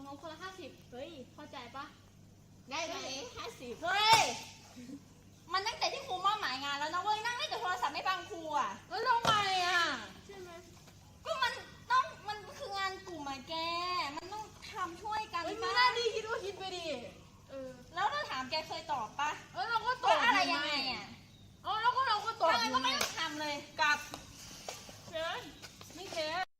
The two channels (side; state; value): both; identical; correlation 1.00